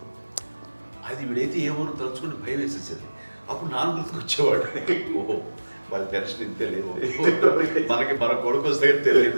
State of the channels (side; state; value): both; inverted; correlation -1.00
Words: అది వీడైతే ఏమో తలుచుకుని భయం వేసేసేది. అప్పుడు నాన్న గుర్తుకు వచ్చేవాడు, ఓహో వాళ్ళ టెన్షన్ ఇంతే లేదు, మనకి మన కొడుకు వస్తే